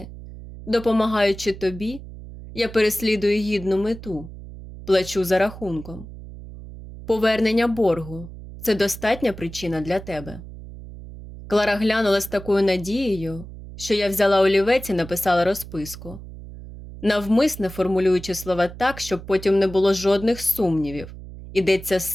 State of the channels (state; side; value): noise; right; hum, 14 dB below the sound